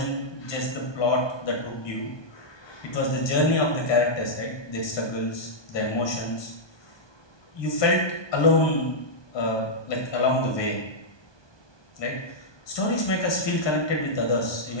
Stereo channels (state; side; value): late; right; 1.2 ms